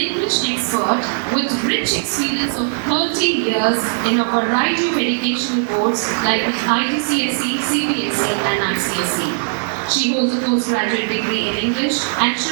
expert with rich experience of 30 years in a variety of educational boards like the IGCSE, CBSE and ICSE. She holds a postgraduate degree in English and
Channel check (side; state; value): left; silent; digital silence